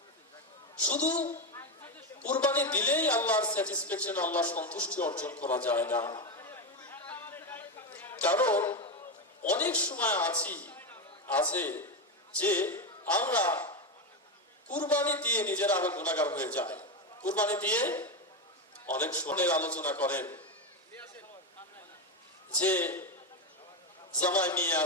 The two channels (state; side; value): normal; both; correlation 0.12